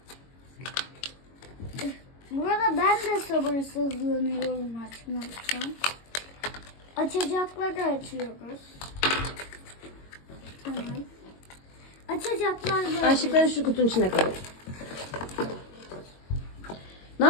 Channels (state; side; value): late; right; 22 ms